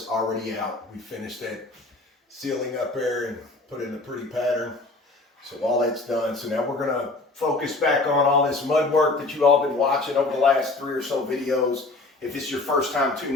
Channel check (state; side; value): quieter; right; 3.2 dB